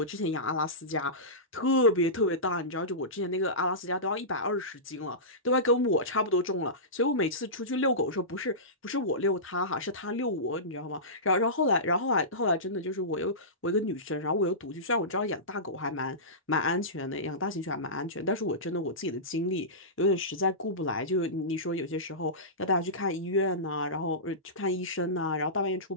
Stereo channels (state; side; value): normal; both; correlation -0.20